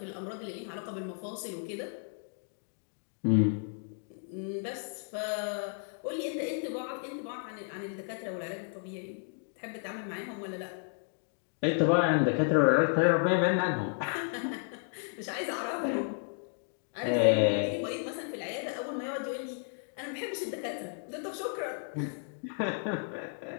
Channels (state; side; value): silent; right; 56 dB below the other